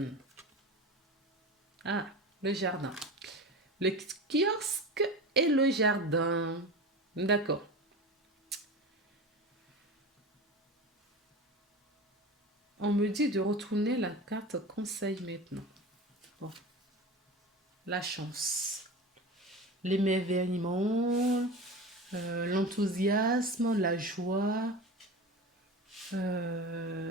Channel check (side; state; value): both; normal; correlation 0.30